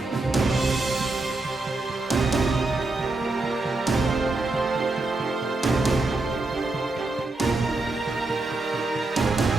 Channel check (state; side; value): quieter; left; 3.1 dB